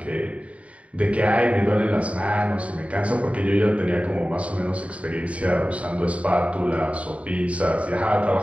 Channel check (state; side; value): late; left; 0.065 ms